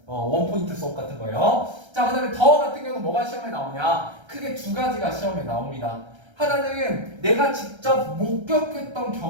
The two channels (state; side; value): late; left; 1.3 ms